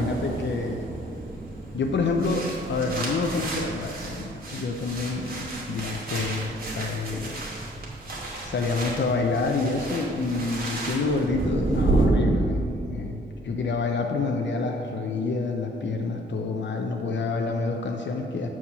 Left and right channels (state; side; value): normal; both; correlation 0.55